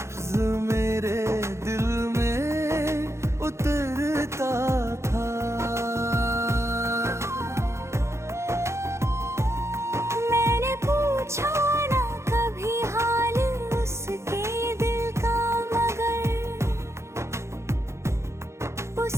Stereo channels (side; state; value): left; late; 0.13 ms